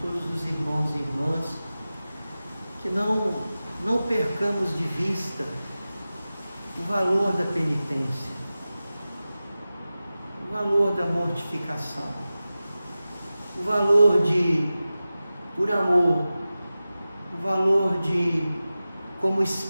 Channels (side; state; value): both; inverted; correlation -0.95